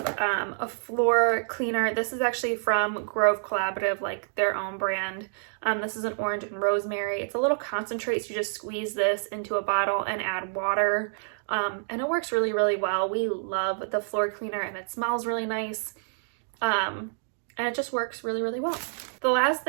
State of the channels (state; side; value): silent; left; digital silence